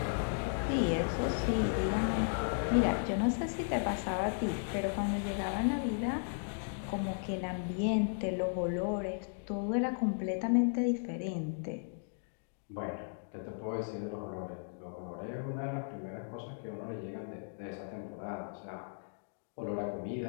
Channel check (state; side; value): silent; right; digital silence